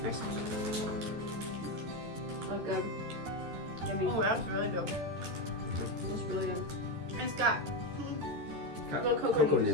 Nice. Oh, good. Yummy. Oh, that's really good. That's really good. It's got Little cocoa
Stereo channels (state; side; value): late; left; 13 ms